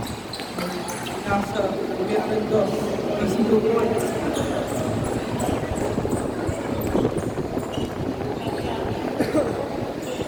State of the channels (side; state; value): both; identical; correlation 1.00